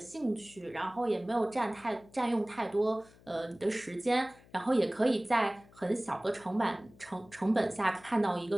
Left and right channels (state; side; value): noise; left; hum, 25 dB below the sound